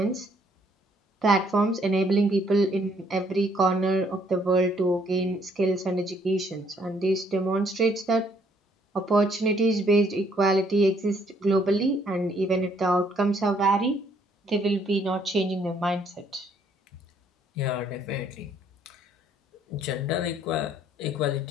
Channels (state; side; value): normal; both; correlation 0.66